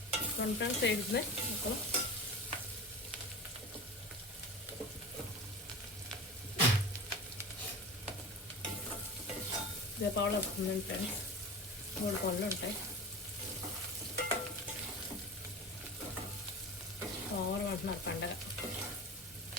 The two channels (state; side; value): normal; both; correlation 0.33